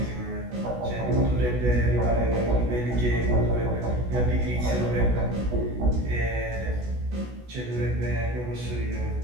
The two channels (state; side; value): late; left; 16 ms